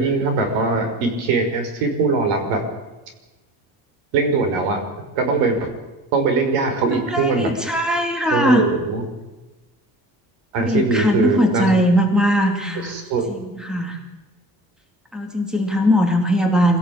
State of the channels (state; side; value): normal; both; correlation 0.42